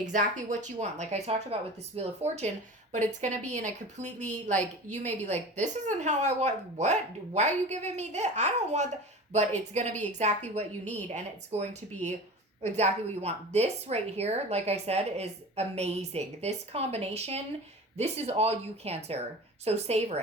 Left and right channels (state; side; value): normal; both; correlation 0.35